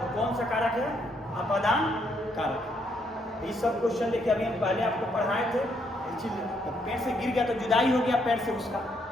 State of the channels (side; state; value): both; normal; correlation 0.73